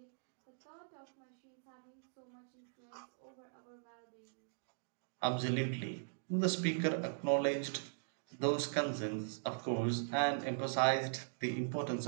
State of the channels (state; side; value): silent; left; digital silence